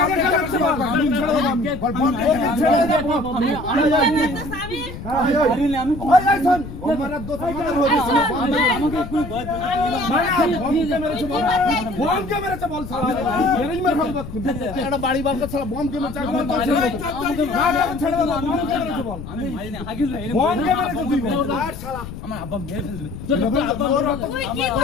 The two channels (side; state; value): left; noise; rumble, 11 dB below the sound